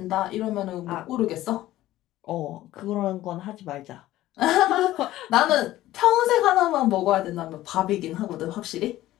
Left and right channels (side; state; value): right; quieter; 15.2 dB